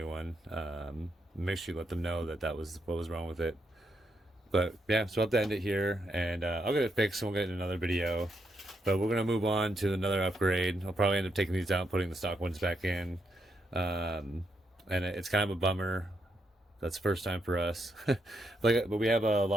one. Make sure you let them know that was what was wrong with it. But yeah, so I'll have to end it here, and I'll get it fixed, and we'll get in another video. But we're going to move on to another upgrade. I'll probably end up taking these out and putting the stock ones back in. And it's kind of a bummer. That's the first time for us. But we have a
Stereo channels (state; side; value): normal; both; correlation 0.80